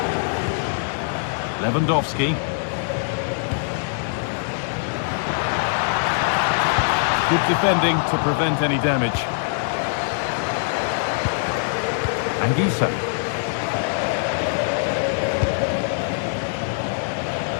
Lewandowski. Good defending to prevent any damage. Anguissa.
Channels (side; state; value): right; silent; 64 dB below the other